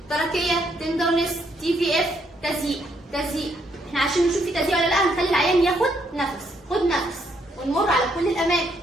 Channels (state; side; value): normal; both; correlation 0.73